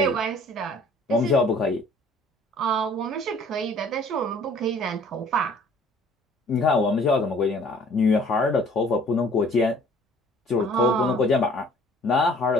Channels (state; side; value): normal; both; correlation 0.54